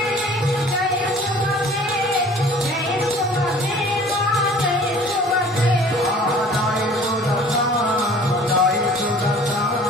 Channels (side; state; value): both; normal; correlation 0.49